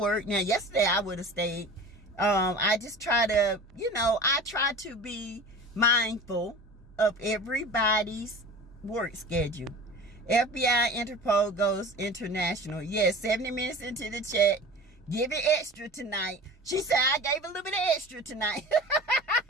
Now, yesterday I would have stayed. I just try to, I try to be mindful of everybody's work schedule. FBI Interpol goes international. Yes, 70 minutes into the chat. Give it extra tonight. She said, I gave a little bit of extra tonight.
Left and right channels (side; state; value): both; normal; correlation 0.37